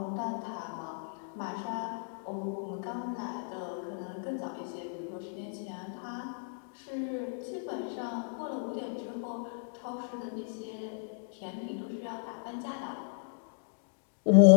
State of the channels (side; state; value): right; silent; digital silence